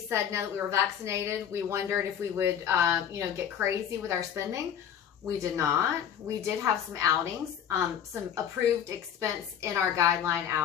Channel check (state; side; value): quieter; right; 9.0 dB